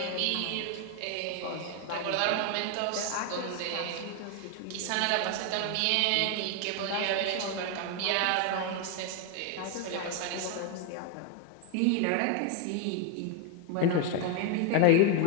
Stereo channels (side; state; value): both; different; correlation 0.01